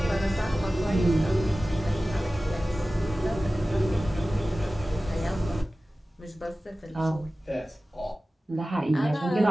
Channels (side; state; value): both; normal; correlation 0.96